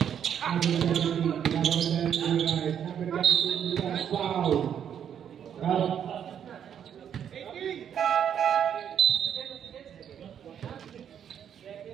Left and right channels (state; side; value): quieter; left; 8.8 dB